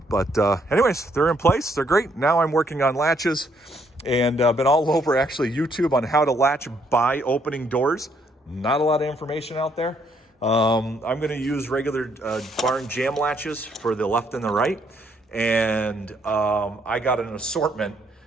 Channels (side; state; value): both; normal; correlation 0.70